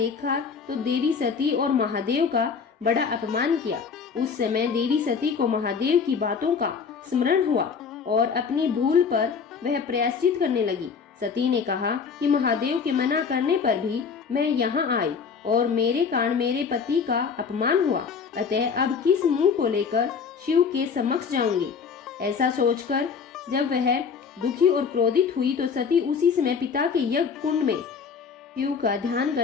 तो देवी सती और महादेव का बड़ा अपमान किया। उस समय देवी सती को महादेव की बातों का स्मरण हुआ और अपनी भूल पर वह प्रायश्चित करने लगी। सती ने कहा कि महादेव के मना करने पर भी मैं यहाँ आई और मेरे कारण मेरे पति का अपमान हुआ, अतः अब किस मुंह को लेकर शिव के समक्ष जाऊंगी। ऐसा सोचकर जब वह दुखी और क्रोधित हुई तो सती उसी समय पिता के यज्ञ कुंड में शिव का ध्यान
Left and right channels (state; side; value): quieter; right; 5.9 dB